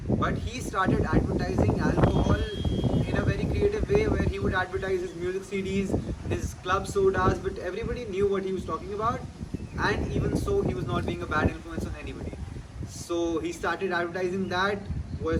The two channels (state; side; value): identical; both; correlation 1.00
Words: but he started advertising alcohol in a very creative way, where he would advertise his music CDs, his club sodas, but everybody knew what he was talking about, and even so he was not being a bad influence on anybody. So he started advertising. That